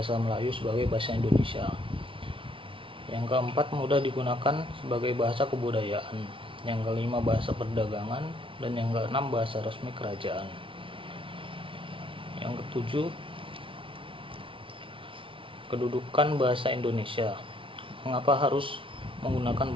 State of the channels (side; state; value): left; late; 0.25 ms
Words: Melayu sebagai bahasa Indonesia. Yang keempat mudah digunakan sebagai bahasa kebudayaan. Yang kelima bahasa perdagangan, dan yang keenam bahasa resmi kerajaan. Yang ketujuh kedudukan bahasa Indonesia. Mengapa harus menggunakan